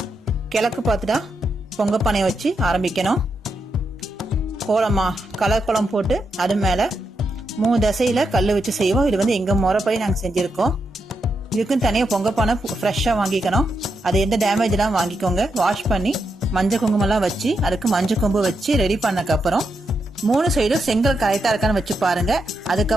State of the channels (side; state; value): both; normal; correlation 0.84